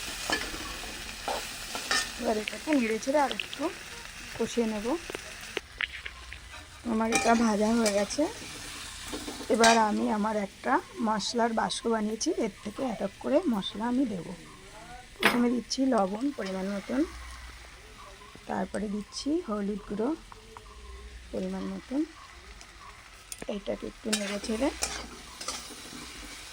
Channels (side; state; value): both; identical; correlation 1.00